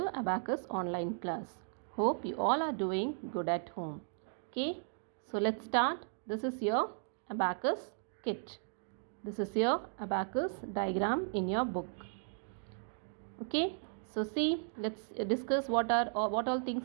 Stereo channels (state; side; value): silent; left; 54 dB below the other